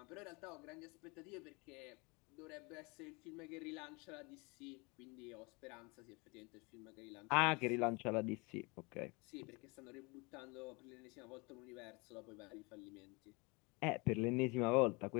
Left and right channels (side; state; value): right; quieter; 28.4 dB